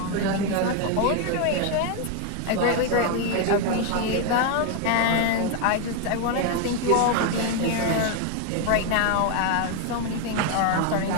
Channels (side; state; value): both; different; correlation 0.01